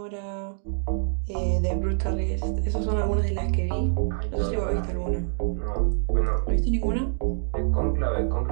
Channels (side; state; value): left; silent; digital silence